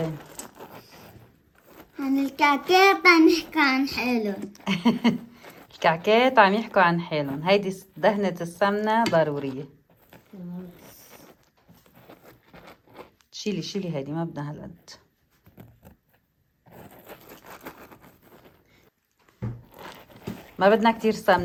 عن الكعكات عم نحكي عن حالهم. الكعكات عم يحكوا عن حالهم. هيدي دهنة السمنة ضرورية. شيلي هيدي، ما بدنا هالقد. ما بدنا كتير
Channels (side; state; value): both; identical; correlation 1.00